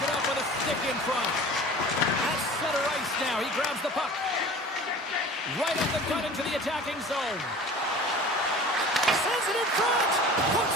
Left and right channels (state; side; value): normal; both; correlation 0.41